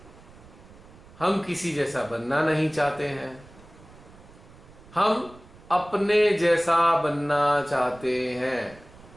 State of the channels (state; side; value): noise; right; rumble, 22 dB below the sound